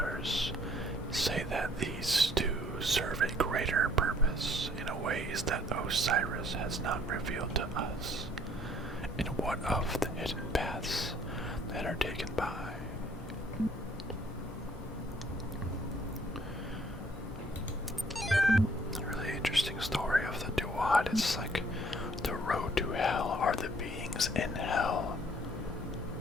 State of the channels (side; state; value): both; normal; correlation 0.60